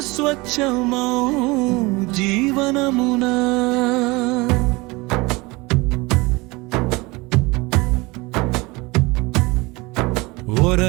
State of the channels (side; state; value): left; quieter; 23.9 dB